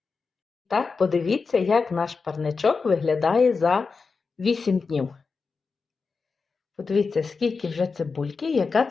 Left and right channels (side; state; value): right; quieter; 4.7 dB